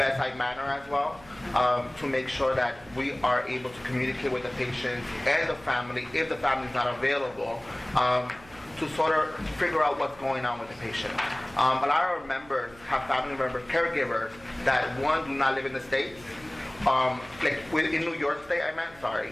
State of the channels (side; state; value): right; noise; hum, 23 dB below the sound